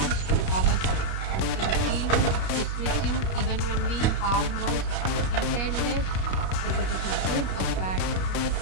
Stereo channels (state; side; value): late; right; 32 ms